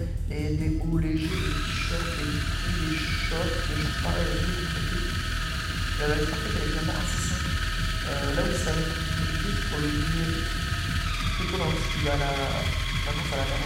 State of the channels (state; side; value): identical; both; correlation 1.00